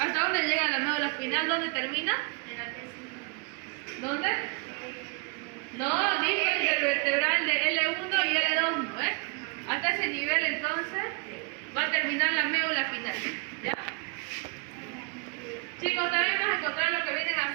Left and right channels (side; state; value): left; quieter; 34.3 dB